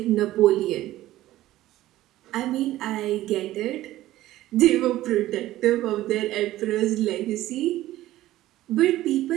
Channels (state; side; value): quieter; left; 15.2 dB